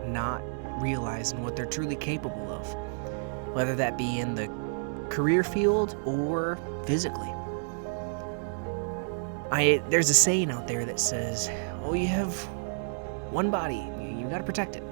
not realizing what they're truly capable of, whether that be in the career field or physically. There's a saying out there that says, oh, you have one body, you gotta protect it.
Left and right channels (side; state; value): left; silent; digital silence